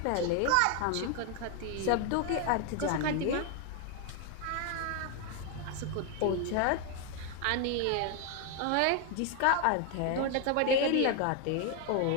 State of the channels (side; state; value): both; different; correlation 0.01